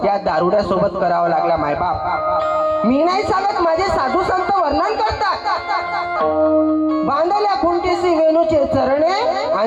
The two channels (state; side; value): identical; both; correlation 1.00